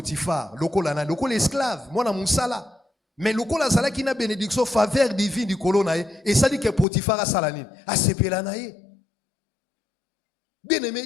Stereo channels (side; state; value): right; drops out; at 6.9 s